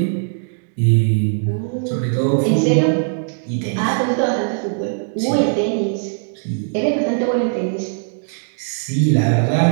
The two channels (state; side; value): silent; left; 66 dB below the other